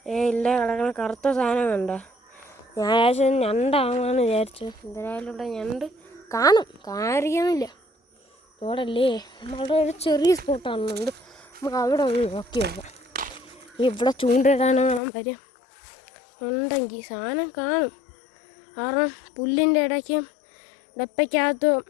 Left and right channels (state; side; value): drops out; right; at 15.0 s